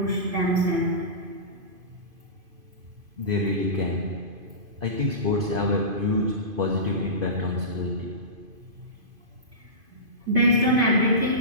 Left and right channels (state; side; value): late; left; 2.5 ms